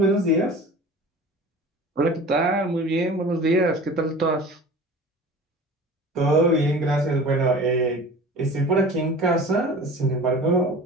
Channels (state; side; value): normal; both; correlation 0.39